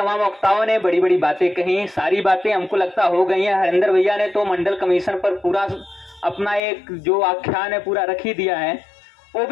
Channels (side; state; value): right; drops out; at 6.6 s